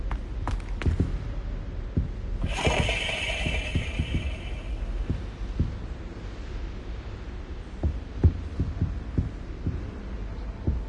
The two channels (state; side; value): identical; both; correlation 1.00